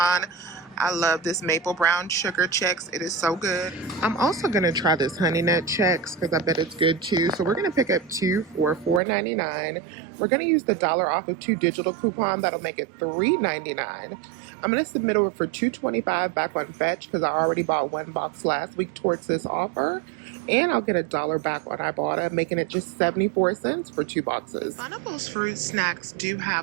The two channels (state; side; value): drops out; left; at 9.0 s